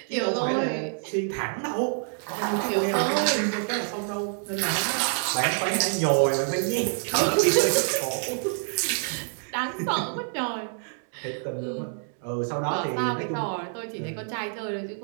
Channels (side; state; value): left; silent; 57 dB below the other